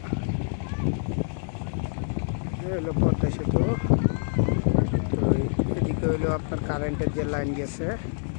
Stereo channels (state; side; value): silent; right; digital silence